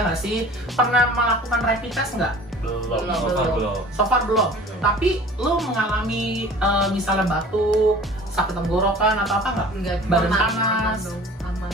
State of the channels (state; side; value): normal; both; correlation 0.45